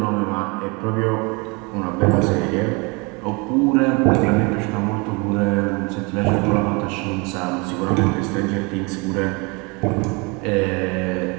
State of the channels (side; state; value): left; quieter; 29.0 dB